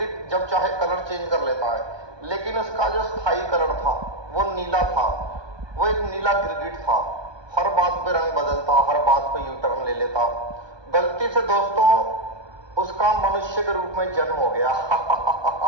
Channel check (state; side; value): late; left; 1.2 ms